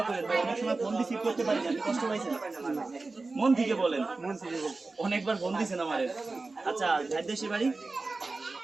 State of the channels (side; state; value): left; quieter; 3.6 dB